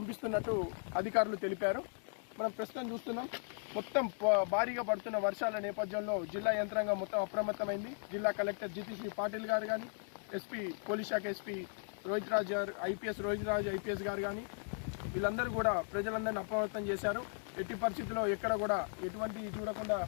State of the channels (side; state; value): right; silent; 53 dB below the other